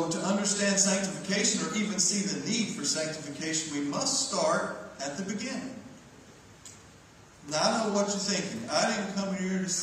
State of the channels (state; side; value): identical; both; correlation 1.00